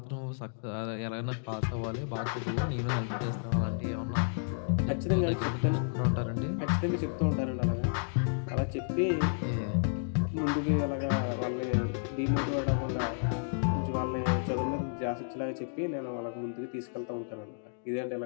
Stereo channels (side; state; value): right; silent; digital silence